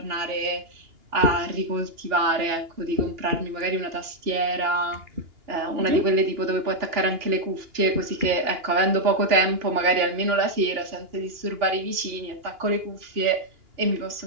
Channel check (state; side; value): late; left; 2.8 ms